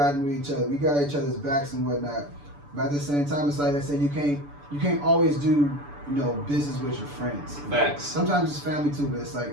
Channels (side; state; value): left; late; 6.9 ms